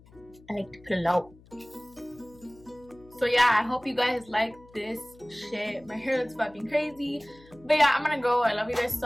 like to put it out. So yeah, I hope you guys like this shit. My hair looks fucking crazy. But yeah, I'm gonna go. I love you guys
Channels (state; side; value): noise; left; hum, 25 dB below the sound